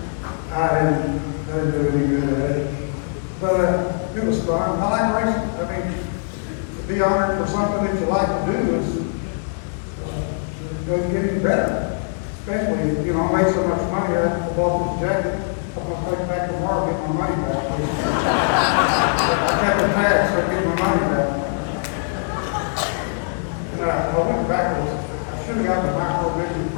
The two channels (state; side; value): silent; right; digital silence